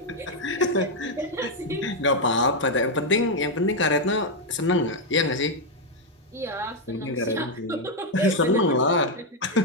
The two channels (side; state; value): both; normal; correlation 0.01